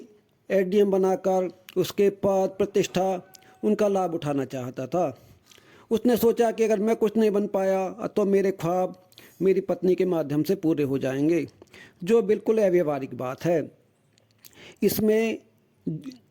एसडीएम बनाकर उसके पद प्रतिष्ठा उनका लाभ उठाना चाहता था। उसने सोचा कि अगर मैं कुछ नहीं बन पाया तो मेरे ख्वाब मेरी पत्नी के माध्यम से पूरे हो जाएंगे, जो बिल्कुल अव्यावहारिक बात है। इसमें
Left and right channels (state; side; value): identical; both; correlation 1.00